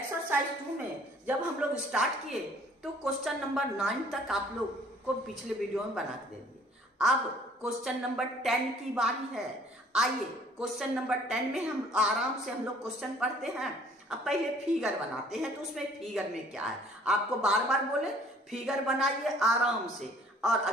2 में जब हम लोग स्टार्ट किए तो क्वेश्चन नंबर 9 तक आप लोग को पिछले वीडियो में बना के दे दिए। अब क्वेश्चन नंबर 10 की बारी है। आइए क्वेश्चन नंबर 10 में हम आराम से हम लोग क्वेश्चन पढ़ते हैं। अब पहले फिगर बनाते हैं, तो उसमें फिगर में क्या है आपको बार बार बोले फिगर बनाइए आराम से, और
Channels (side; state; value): both; normal; correlation 0.56